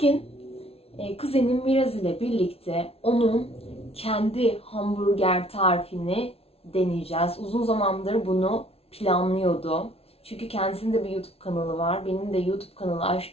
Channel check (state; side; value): late; right; 0.29 ms